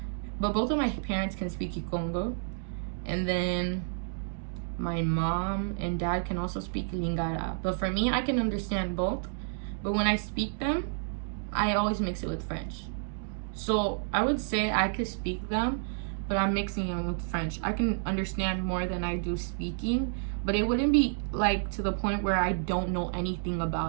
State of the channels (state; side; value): silent; left; digital silence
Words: but both of my parents can speak Kikongo. And then my mom and dad can also speak Lingala. But for me, I can understand both. But when I speak them, I always mix it with French. So I would say I could speak them, but I'm mixing them with French. I can understand more than I do speaking, but it wouldn't be like to the point where I don't know anything